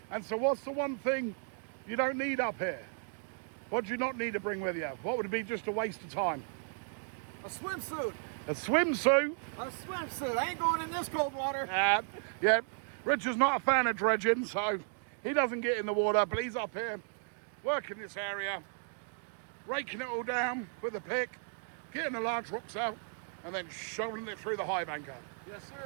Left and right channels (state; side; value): silent; left; 55 dB below the other